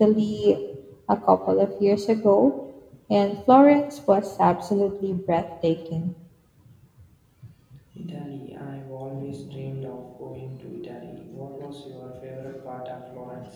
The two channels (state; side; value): identical; both; correlation 1.00